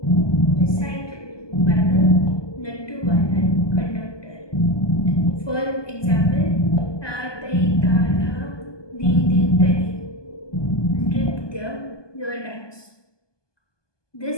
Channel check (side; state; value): right; late; 1.2 ms